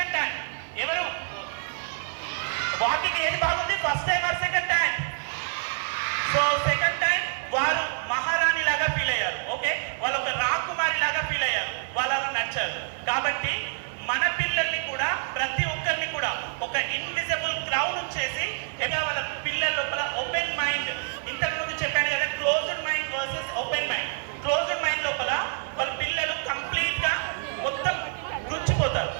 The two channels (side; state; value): left; silent; digital silence